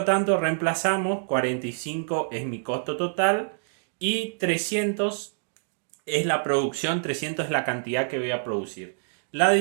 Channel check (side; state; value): left; silent; digital silence